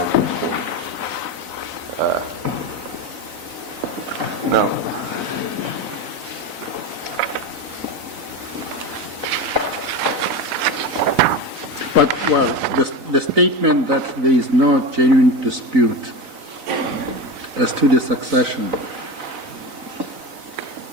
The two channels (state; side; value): late; left; 4.0 ms